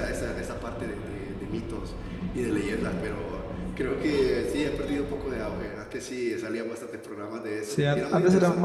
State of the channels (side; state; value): both; identical; correlation 1.00